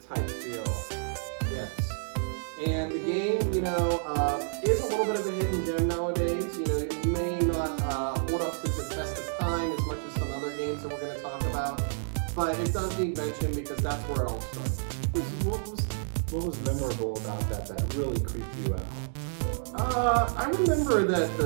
type feel. Yes. And the game, is a little bit of a hidden gem nowadays. It may not hold up to the test of time as much as some other games that we're going to talk about, but it does need mention because that's where it all started. What was memorable about that really creeped you out? I remember that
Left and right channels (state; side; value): silent; left; digital silence